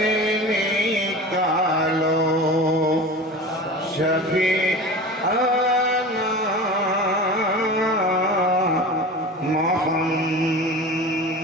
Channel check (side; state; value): both; normal; correlation 0.33